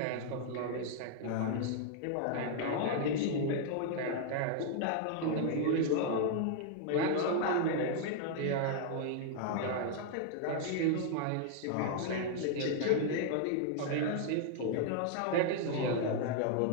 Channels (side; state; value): both; different; correlation 0.00